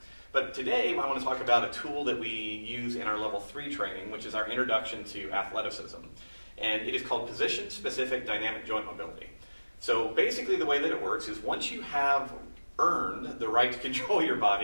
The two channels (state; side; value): inverted; both; correlation -1.00